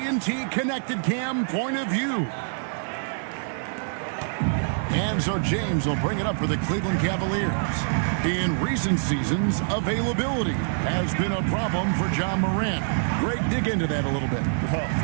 Connected Cam point of view. And so James will bring it up for the Cleveland Cavaliers. In recent seasons, availability has been a problem for Ja Morant. Greg, dig into that a little bit. Well,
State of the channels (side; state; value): left; silent; digital silence